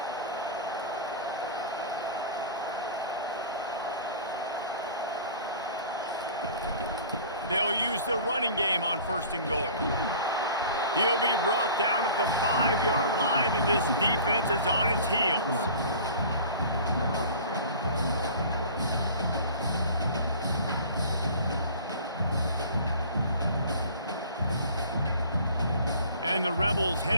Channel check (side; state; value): both; inverted; correlation -0.43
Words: They'll use the running game on 1st and goal. He'll be brought down at the 5-yard line, and this defense is on its heels. And the Rebels